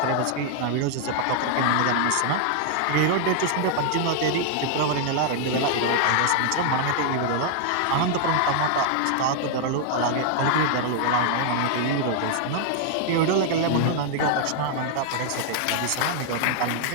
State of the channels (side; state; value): both; different; correlation 0.00